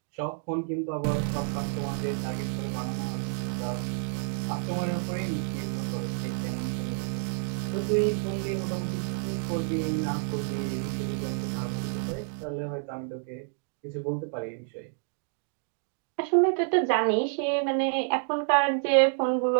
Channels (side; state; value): left; silent; digital silence